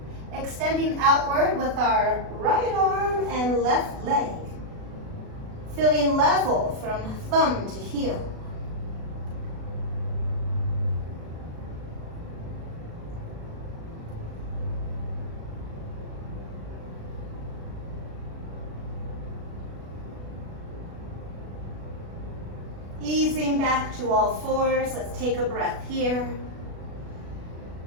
Extending outward with our right arm and left leg. Feeling level from thumb to heel. Easing back to all 4s, let's take a breath here.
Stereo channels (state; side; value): late; left; 36 ms